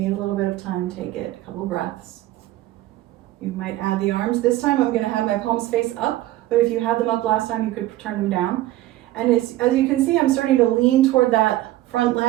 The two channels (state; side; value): quieter; left; 15.8 dB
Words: a little bit of time, take it. A couple breaths. You might add the arms. This time I'm going to have my palms face up, but if you had them up last time, you could turn them down. And as you can see, I'm starting to lean toward that front